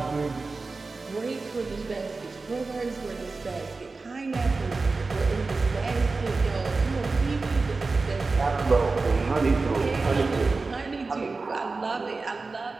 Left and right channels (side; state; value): left; quieter; 3.8 dB